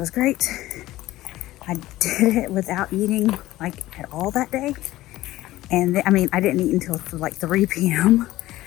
great. I did it without eating at all that day, and I didn't eat until 3 p.m.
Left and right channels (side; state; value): right; quieter; 16.2 dB